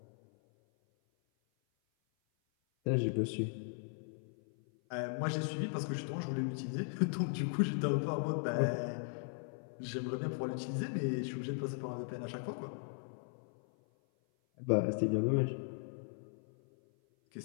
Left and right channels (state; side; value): silent; right; 53 dB below the other